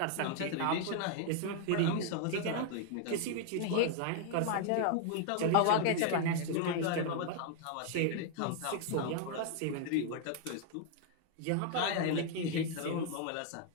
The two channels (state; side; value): different; both; correlation 0.00